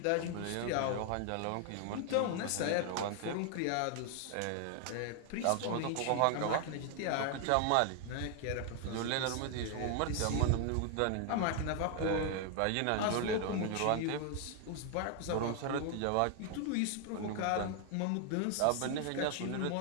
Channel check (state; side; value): different; both; correlation 0.00